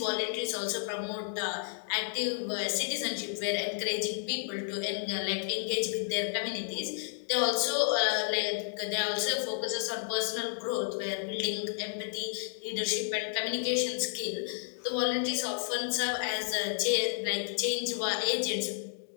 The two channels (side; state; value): right; silent; digital silence